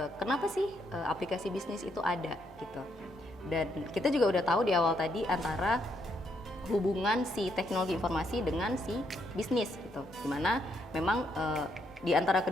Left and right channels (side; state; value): both; normal; correlation 0.75